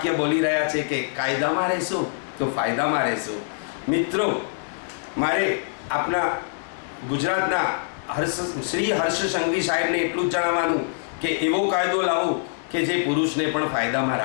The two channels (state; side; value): silent; right; digital silence